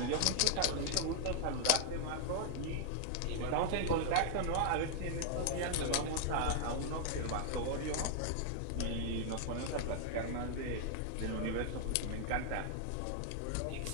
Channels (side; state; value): both; different; correlation 0.00